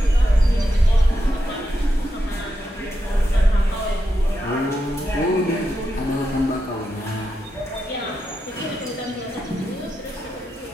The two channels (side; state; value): both; normal; correlation 0.86